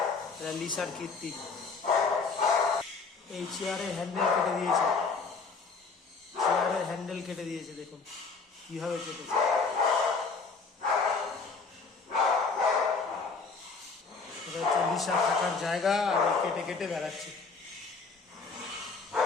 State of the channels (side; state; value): right; quieter; 4.5 dB